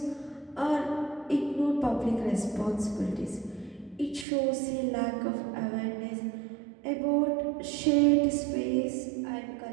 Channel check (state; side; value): drops out; left; at 4.2 s